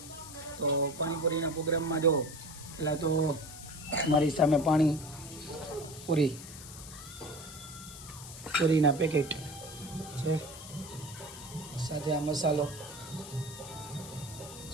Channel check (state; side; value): noise; left; hiss, 14 dB below the sound